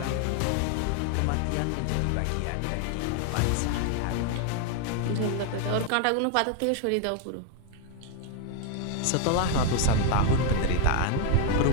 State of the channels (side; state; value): both; different; correlation 0.01